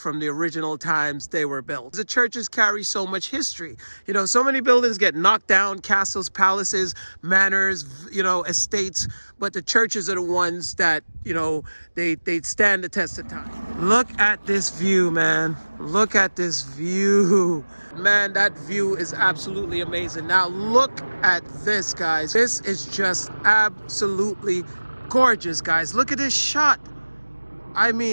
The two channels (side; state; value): both; inverted; correlation -1.00